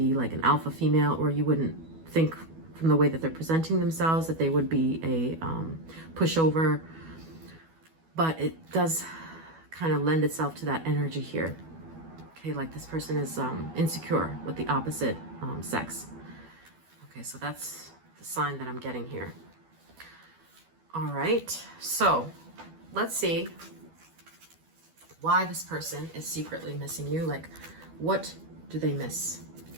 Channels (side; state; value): left; late; 12 ms